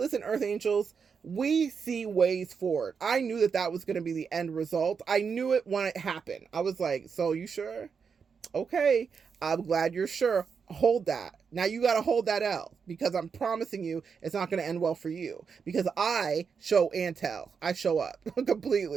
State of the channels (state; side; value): quieter; left; 6.0 dB